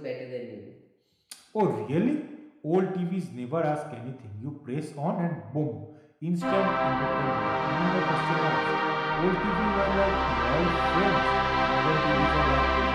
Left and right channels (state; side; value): identical; both; correlation 1.00